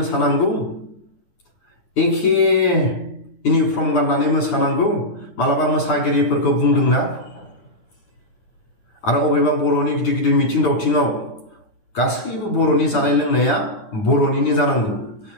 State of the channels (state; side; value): late; right; 9.8 ms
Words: एखे इउनिफर्म गाननानै मोसानांगौ, मालाबा मोसागिरिफोरखौ बुंदोंना। आरो अबेबा बर'नि गिदिर गिदिर मिथिं दावथिङाव गासैबो बर'नि जानाय लोंनाया बर'निनो जानांगौ।